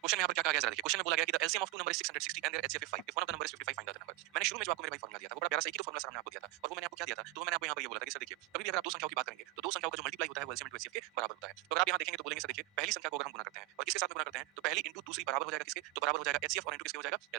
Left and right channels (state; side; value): quieter; left; 17.5 dB